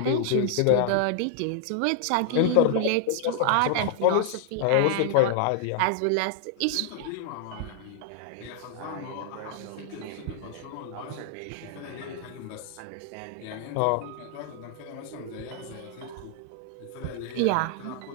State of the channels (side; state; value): both; different; correlation 0.00